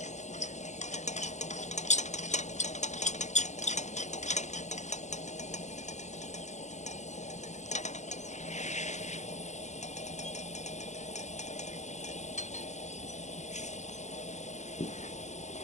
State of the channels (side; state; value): right; late; 0.34 ms